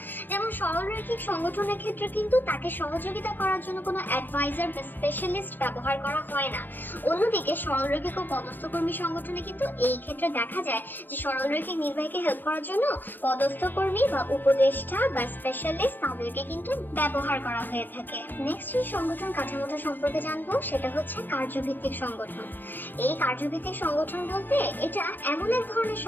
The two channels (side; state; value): right; late; 0.090 ms